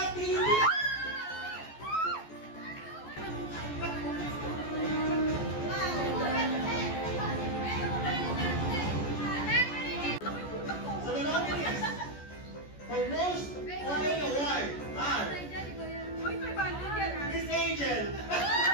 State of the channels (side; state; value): right; late; 14 ms